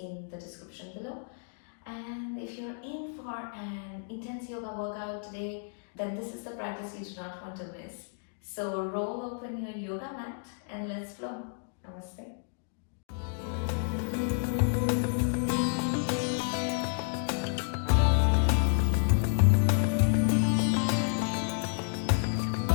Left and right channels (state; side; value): silent; right; digital silence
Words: the description below. And if you're in for an intense yoga workout today, then this is the practice you do not want to miss. So roll open your yoga mat and let's flow. Namaste.